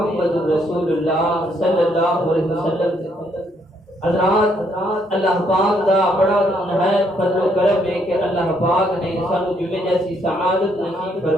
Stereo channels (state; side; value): normal; both; correlation 0.71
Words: رسول اللہ صلی اللہ علیہ وسلم حضرات اللہ پاک دا بڑا نہایت فضل و کرم ہے کہ اللہ پاک نے سانو جمعے جیسی سعادت نصیب